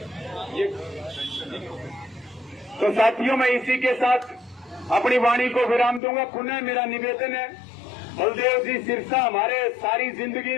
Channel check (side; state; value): right; drops out; at 6.0 s